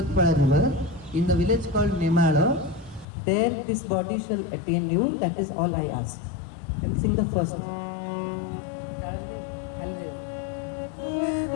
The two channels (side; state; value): right; drops out; at 3.1 s